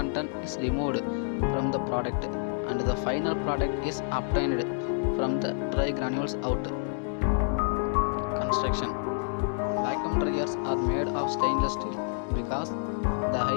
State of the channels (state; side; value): silent; right; digital silence